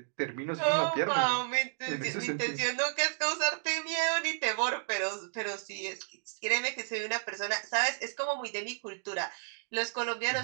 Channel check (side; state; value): left; silent; digital silence